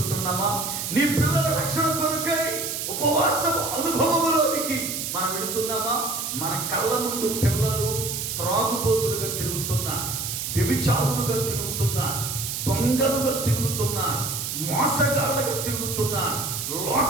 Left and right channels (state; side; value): noise; right; hiss, 4 dB below the sound